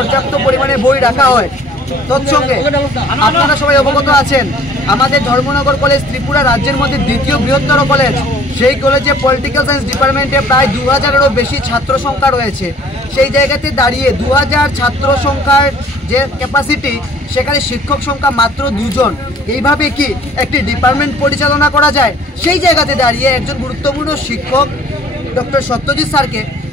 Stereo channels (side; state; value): both; normal; correlation 0.54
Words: পরিমাণে বই রাখা হয়। তৎসঙ্গে আপনারা সবাই অবগত আছেন, আমাদের ধর্মনগর কলেজ ত্রিপুরা রাজ্যের মধ্যে দ্বিতীয় বৃহত্তর কলেজ। সেই কলেজে পলিটিক্যাল সায়েন্স ডিপার্টমেন্টে প্রায় 2000-এরও বেশি ছাত্র সংখ্যা রয়েছে। সেই জায়গাতে দাঁড়িয়ে 2000 ছাত্র সংখ্যার যে ক্যাপাসিটি, সেখানে শিক্ষক সংখ্যা মাত্র 2 জন। এইভাবে কি একটি ডিপার্টমেন্ট পরিচালনা করা যায়? সেই জায়গাতে দাঁড়িয়ে একজন গুরুত্বপূর্ণ শিক্ষক ডক্টর সত্যজিৎ স্যারকে